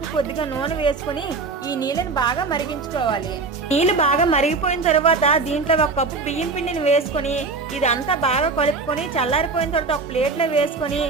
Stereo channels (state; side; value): quieter; left; 4.2 dB